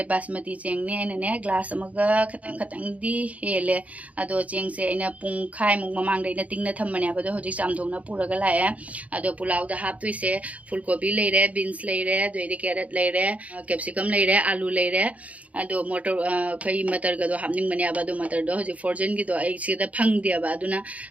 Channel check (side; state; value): left; late; 0.068 ms